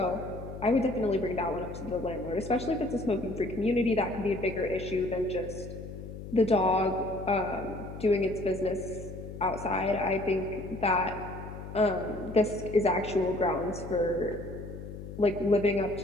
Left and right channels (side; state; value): left; noise; hum, 11 dB below the sound